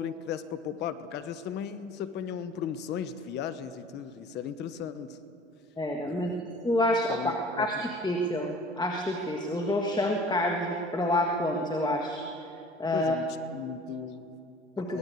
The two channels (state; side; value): normal; both; correlation 0.47